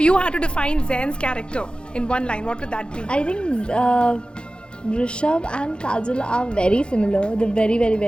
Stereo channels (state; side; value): late; right; 0.053 ms